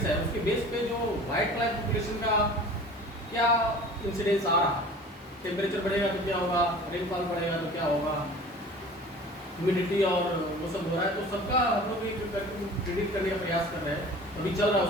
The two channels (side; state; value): both; normal; correlation 0.42